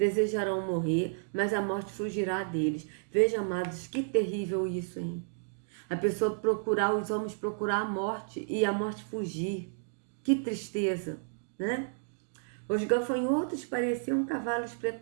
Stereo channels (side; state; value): left; silent; digital silence